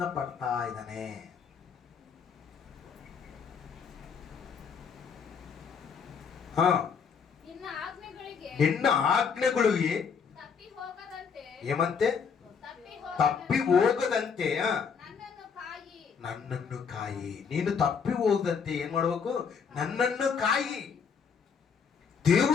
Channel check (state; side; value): quieter; right; 6.2 dB